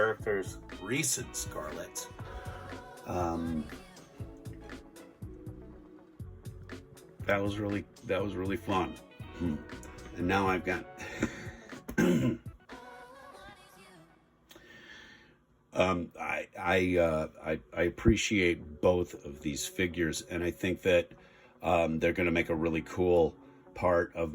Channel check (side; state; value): both; identical; correlation 1.00